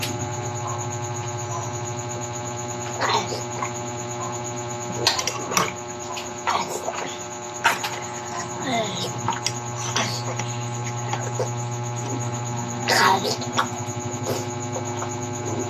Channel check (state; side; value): identical; both; correlation 1.00